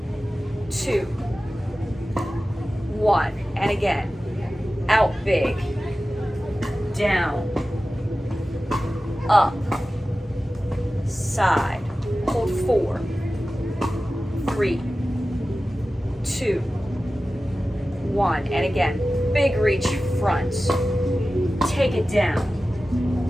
2, 1. And again, out big. Down. Up. Side. Hold 4, 3, 2, 1. And again, big reach front. Take it down.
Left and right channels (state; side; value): normal; both; correlation 0.95